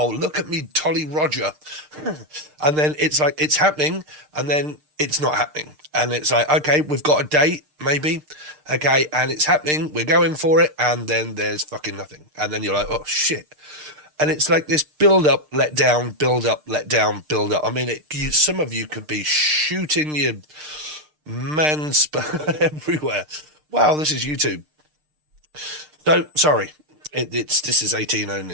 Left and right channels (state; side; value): late; left; 6.6 ms